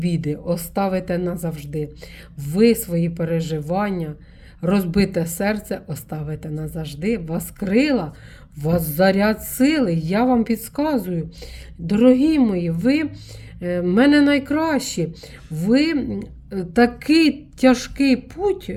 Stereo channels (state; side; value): identical; both; correlation 1.00